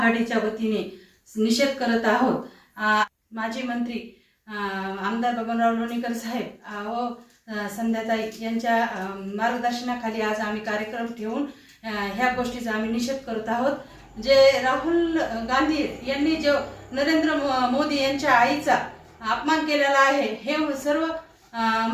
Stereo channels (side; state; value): both; identical; correlation 1.00